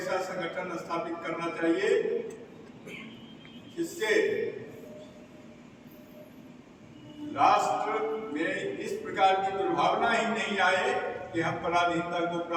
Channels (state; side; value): identical; both; correlation 1.00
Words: संगठन स्थापित करना चाहिए जिससे राष्ट्र में इस प्रकार की दुर्भावना ही नहीं आए कि हम पराधीनता को